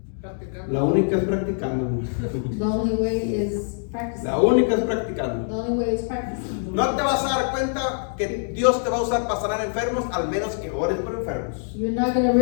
La única es practicando. The only way is practicing. La única es practicando. The only way is practicing. No te vas a dar cuenta que Dios te va a usar para sanar enfermos, al menos que ores por enfermos. You're not going to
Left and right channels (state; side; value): silent; right; digital silence